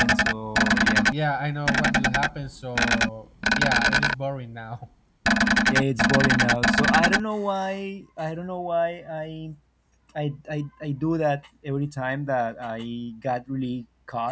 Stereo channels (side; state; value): both; identical; correlation 1.00